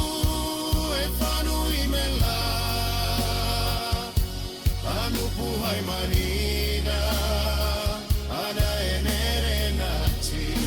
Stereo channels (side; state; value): both; identical; correlation 1.00